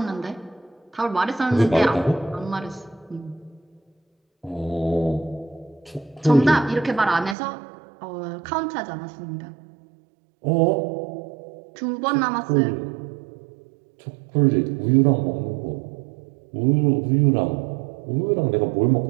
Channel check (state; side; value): drops out; left; at 7.4 s